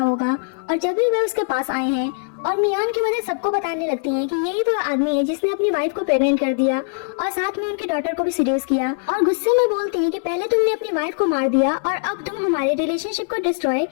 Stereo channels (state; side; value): silent; right; digital silence